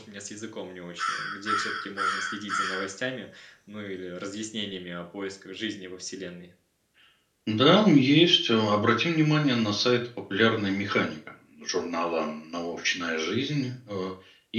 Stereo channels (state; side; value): identical; both; correlation 1.00